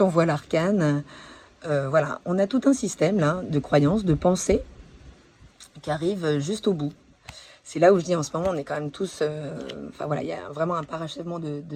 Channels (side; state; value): both; identical; correlation 1.00